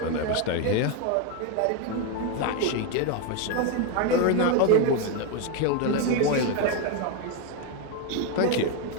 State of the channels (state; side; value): different; both; correlation 0.02